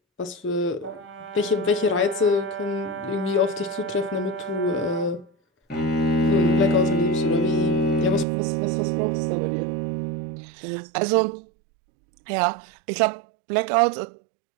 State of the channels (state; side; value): drops out; left; at 8.2 s